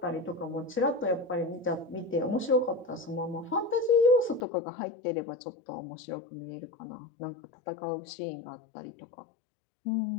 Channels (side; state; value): right; drops out; at 4.5 s